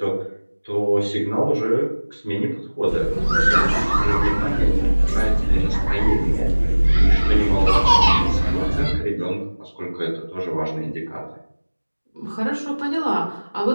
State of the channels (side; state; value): both; inverted; correlation -1.00